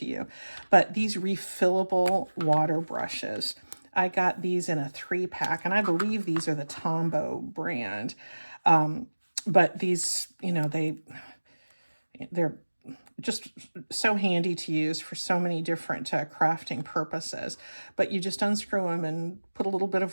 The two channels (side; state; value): both; inverted; correlation -1.00